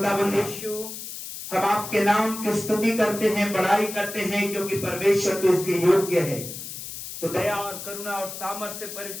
यीशु, हम आपके नाम की स्तुति करते हैं, बड़ाई करते हैं क्योंकि परमेश्वर तो इसके योग्य है। तो दया और करुणा और सामर्थ्य से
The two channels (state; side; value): noise; left; hiss, 9 dB below the sound